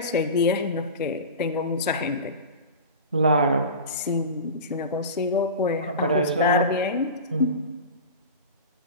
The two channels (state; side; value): inverted; both; correlation -0.30